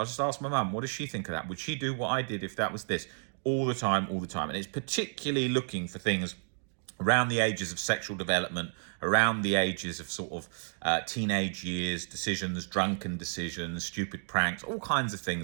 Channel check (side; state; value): left; silent; 57 dB below the other